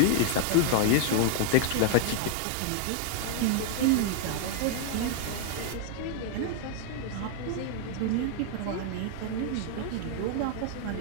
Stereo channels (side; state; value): both; different; correlation 0.00